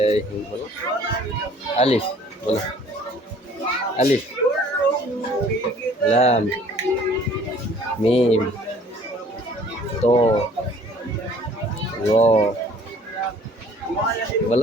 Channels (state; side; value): normal; both; correlation 0.54